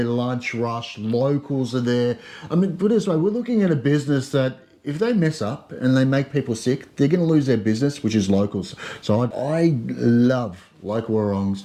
lunch rush. Locals are there. I mean, put it this way, we're looking at a business that if they mess up and they make people sick, they're going to lose their business, which is locals. So I love local warongs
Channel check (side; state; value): both; identical; correlation 1.00